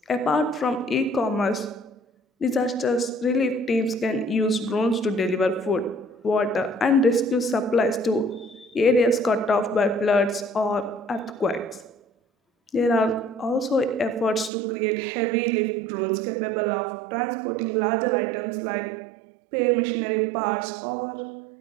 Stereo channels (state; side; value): drops out; left; at 14.5 s